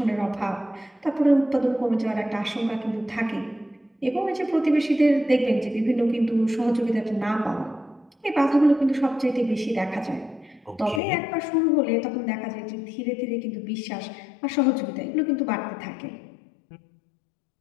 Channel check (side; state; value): right; drops out; at 11.0 s